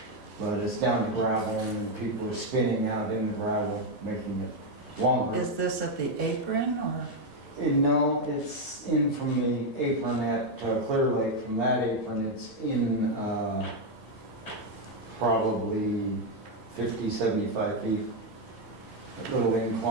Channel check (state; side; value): normal; both; correlation 0.03